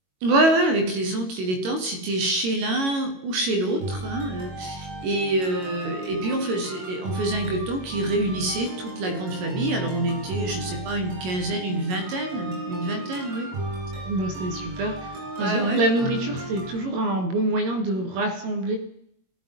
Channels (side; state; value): left; late; 22 ms